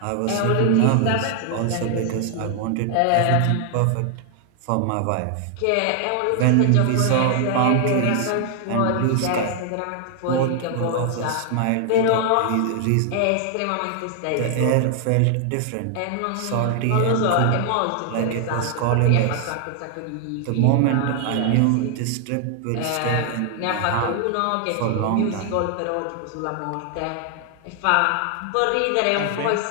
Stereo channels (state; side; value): different; both; correlation 0.00